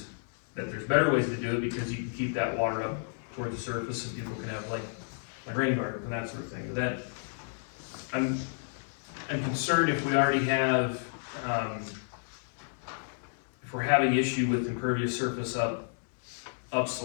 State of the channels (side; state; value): right; silent; digital silence